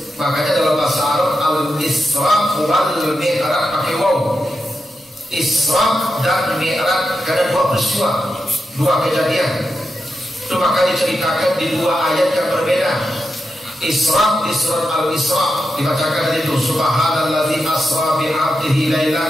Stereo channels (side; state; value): both; normal; correlation 0.88